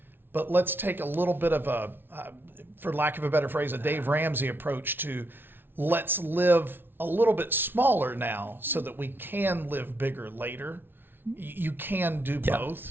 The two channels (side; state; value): left; late; 0.10 ms